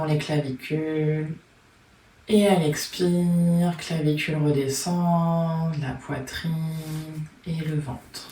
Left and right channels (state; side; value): identical; both; correlation 1.00